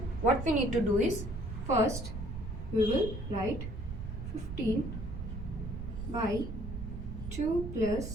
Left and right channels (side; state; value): right; noise; rumble, 7 dB below the sound